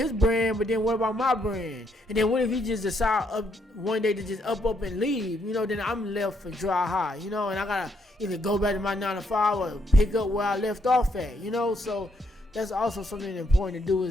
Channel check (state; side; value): normal; both; correlation 0.74